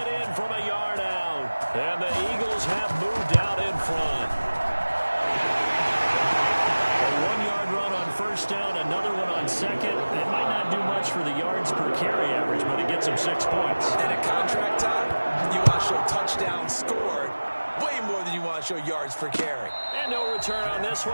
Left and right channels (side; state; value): both; inverted; correlation -1.00